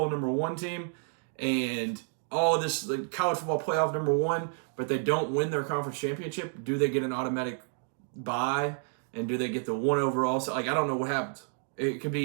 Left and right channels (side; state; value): left; silent; 58 dB below the other